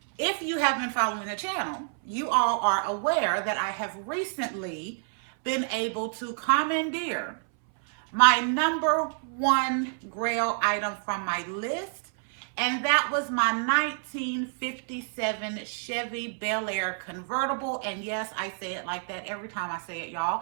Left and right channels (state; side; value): silent; left; 59 dB below the other